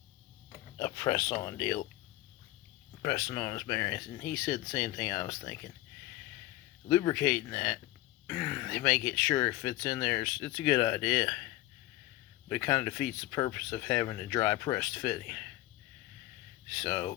a press-on deal, pressing on his bearings, and he said the same thing I was thinking. Lubricating that to make it sure it fits in there, it's a good idea, but it kind of defeats the purpose of having a dry pressed fitting. So,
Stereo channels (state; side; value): quieter; right; 17.2 dB